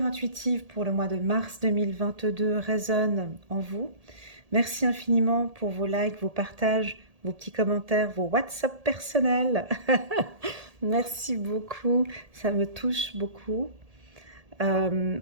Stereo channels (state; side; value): late; left; 1.8 ms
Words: intuitive pour le mois de mars 2022 résonne en vous. Merci infiniment pour vos likes, vos partages, vos petits commentaires, vos WhatsApp personnels. Merci beaucoup, ça me touche beaucoup.